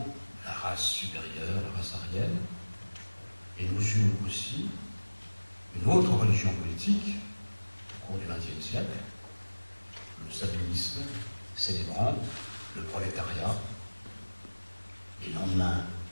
la race supérieure, la race aryenne. Et nous eûmes aussi une autre religion politique au cours du XXe siècle, le sabellisme, célébrant le prolétariat, les lendemains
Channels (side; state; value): both; inverted; correlation -1.00